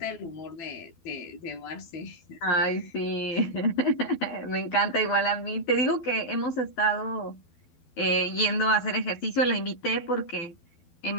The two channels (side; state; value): right; late; 12 ms